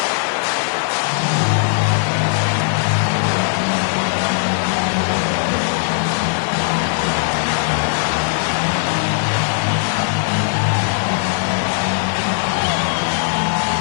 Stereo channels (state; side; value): silent; right; digital silence